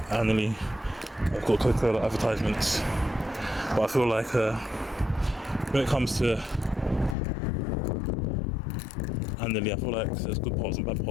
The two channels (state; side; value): drops out; right; at 7.2 s